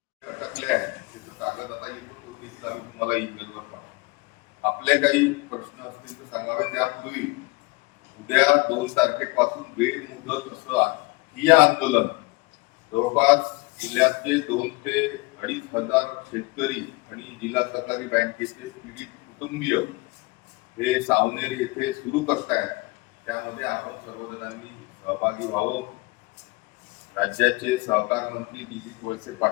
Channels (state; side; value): quieter; right; 24.8 dB